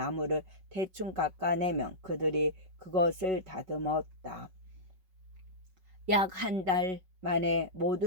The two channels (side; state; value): left; late; 5.4 ms